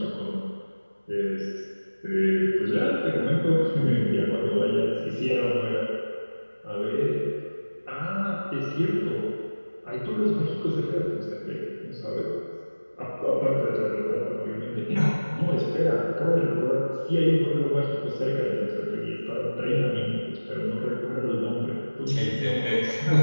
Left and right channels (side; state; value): both; inverted; correlation -1.00